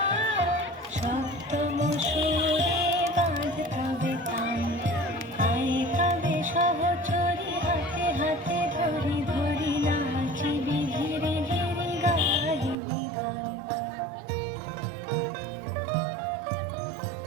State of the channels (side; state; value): left; drops out; at 12.8 s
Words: সপ্তম সুরে বাঁধতবে তান। আয় তবে সহচরী হাতে হাতে ধরি ধরি নাচিবি ধীরে ধীরে গাহিবি গান।